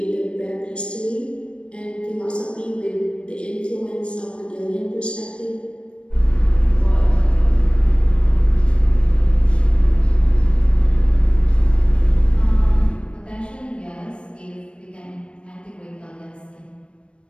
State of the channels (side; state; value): right; late; 0.058 ms